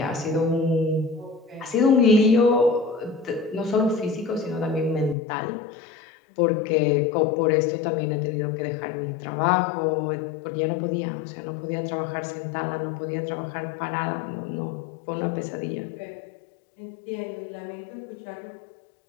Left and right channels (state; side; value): drops out; right; at 5.2 s